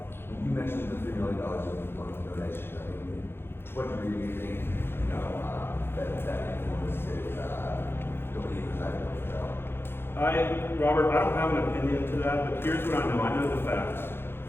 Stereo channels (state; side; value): late; right; 0.11 ms